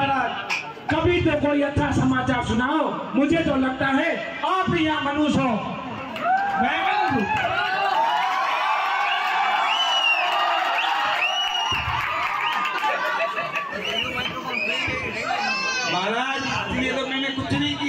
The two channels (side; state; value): both; identical; correlation 1.00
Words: कभी तो कोई अच्छा समाचार सुनाओ। मुझे तो लगता है आप ही यहाँ मनुष्य हो। मैं मनुष्य हूँ। महाराज इसलिए तो मैंने कुछ नहीं